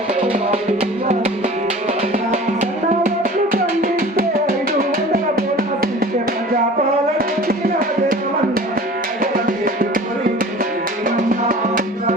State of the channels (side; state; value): both; normal; correlation 0.42